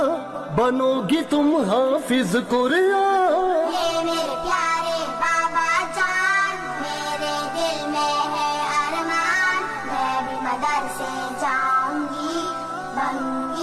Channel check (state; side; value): identical; both; correlation 1.00